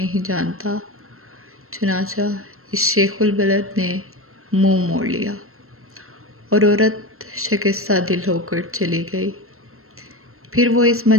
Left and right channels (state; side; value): late; left; 0.62 ms